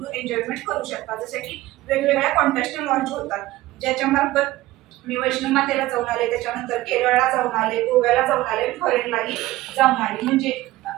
एन्जॉयमेंट करू शकता. जसे की वेगवेगळ्या कॉन्टेस्ट लॉन्च होतात, ज्याच्यामार्फत मी वैष्णव मातेला जाऊन आले, त्याच्यानंतर केरळला जाऊन आले, गोव्याला जाऊन आले, फॉरेनलाही जाऊन आले. म्हणजे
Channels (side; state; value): left; quieter; 17.3 dB